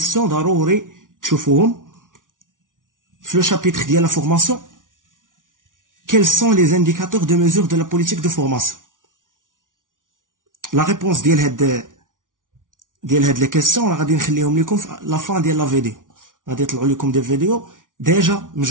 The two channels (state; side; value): late; left; 0.88 ms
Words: ضروري تشوفوهم في le chapitre ديال la formation. Quels sont les indicateurs de mesure de la politique de formation? La réponse ديال هاد les questions راه غادي نخليهم لكم في la fin ديال la vidéo. غادي يطلعوا لكم des vidéos déjà